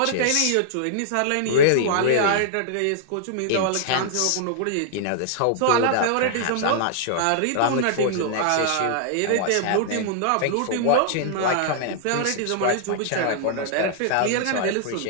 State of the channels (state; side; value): different; both; correlation -0.01